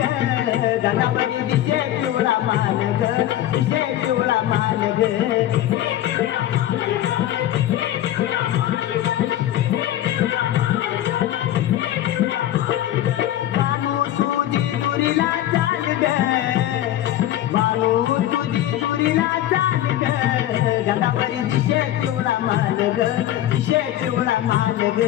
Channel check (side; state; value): right; quieter; 12.9 dB